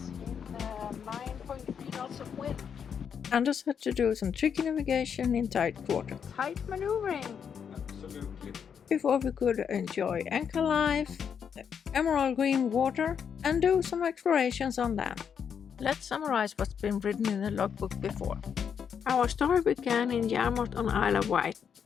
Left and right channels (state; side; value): quieter; right; 7.4 dB